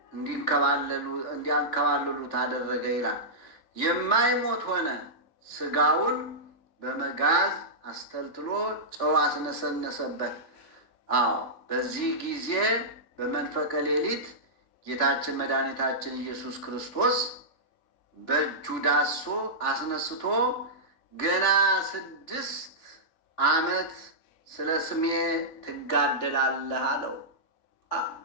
እንዲያንከባልሉት አደረገ ይላል። የማይሞት ሆነ። ስጋውን በመጋዝ አስተልትሎ ጨው አስነሰነሰበት። አዎ በዚህ ጊዜ በመንፈቀ ሌሊት ጌታችን መድኃኒታችን ኢየሱስ ክርስቶስ በእጁ ዳሶ አስነስቶ ገና 6 ዓመት ስለ ስሜ ትጋደላለህ አለው።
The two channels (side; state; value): right; late; 3.4 ms